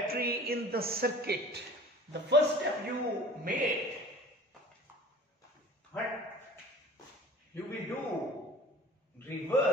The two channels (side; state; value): both; normal; correlation 0.43